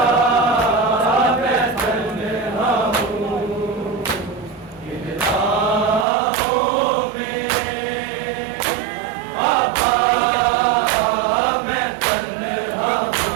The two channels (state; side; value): drops out; left; at 6.1 s